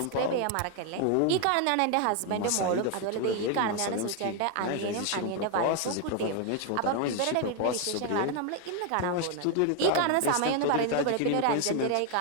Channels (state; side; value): different; both; correlation 0.01